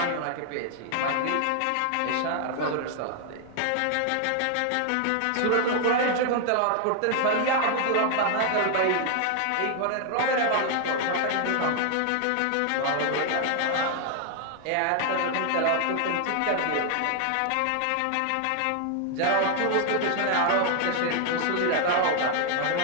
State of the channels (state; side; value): different; both; correlation 0.00